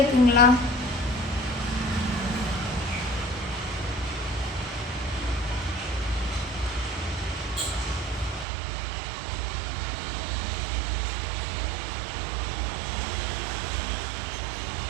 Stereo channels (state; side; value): drops out; left; at 8.5 s